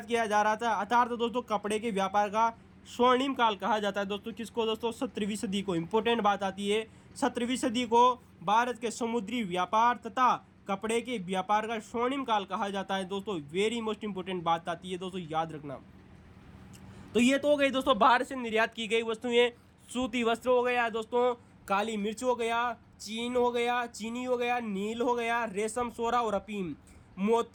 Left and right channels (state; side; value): identical; both; correlation 1.00